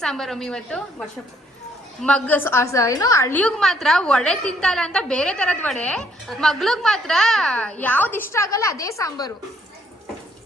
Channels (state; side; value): normal; both; correlation 0.68